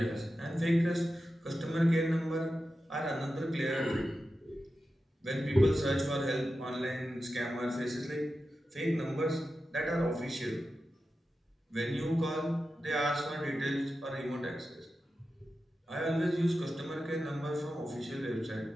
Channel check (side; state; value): both; normal; correlation 0.91